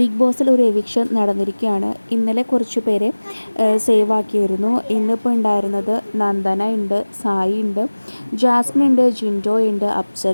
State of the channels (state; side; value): inverted; both; correlation -1.00